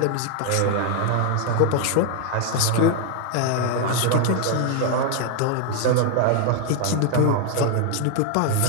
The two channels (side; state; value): both; different; correlation 0.00